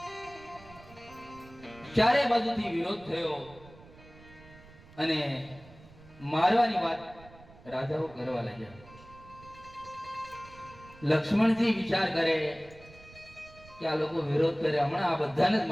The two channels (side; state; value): right; noise; rumble, 22 dB below the sound